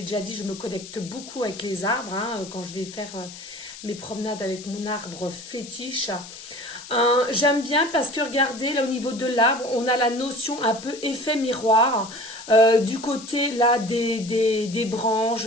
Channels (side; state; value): left; noise; hiss, 14 dB below the sound